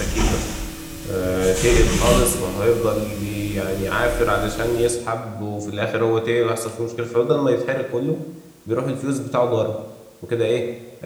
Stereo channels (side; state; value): both; identical; correlation 1.00